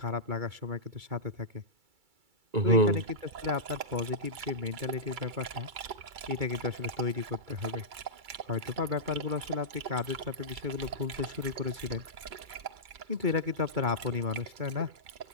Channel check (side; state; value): left; late; 2.3 ms